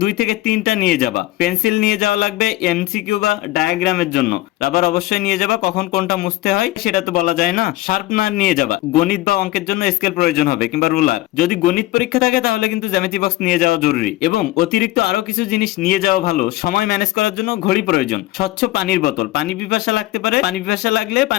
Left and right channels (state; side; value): quieter; right; 17.4 dB